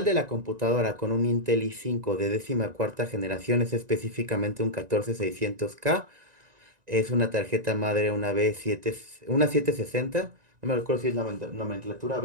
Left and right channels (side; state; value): left; late; 1.9 ms